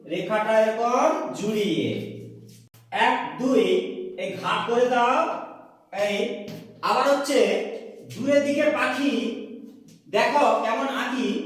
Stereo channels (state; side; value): identical; both; correlation 1.00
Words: রেখাটা এরকম জুড়িয়ে। এক দুই এই ঘাট করে দাও এই। আবার হচ্ছে দূরের দিকে পাখি, দেখো কেমন আঁকি,